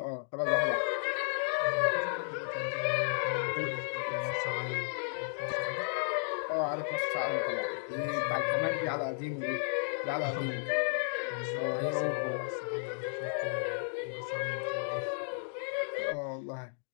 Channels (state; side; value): silent; right; digital silence